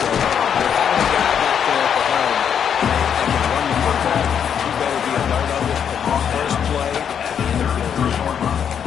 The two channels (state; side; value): quieter; right; 8.1 dB